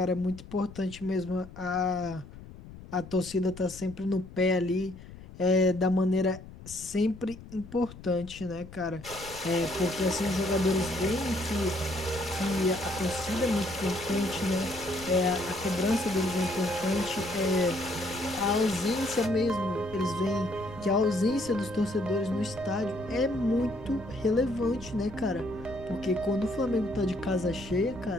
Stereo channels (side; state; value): left; noise; rumble, 16 dB below the sound